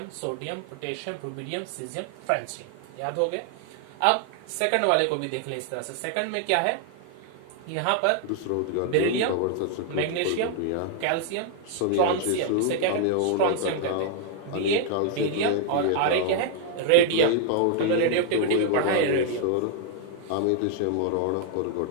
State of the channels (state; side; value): different; both; correlation 0.00